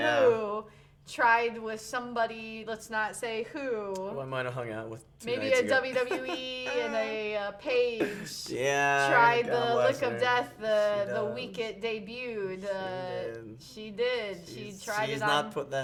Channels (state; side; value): identical; both; correlation 1.00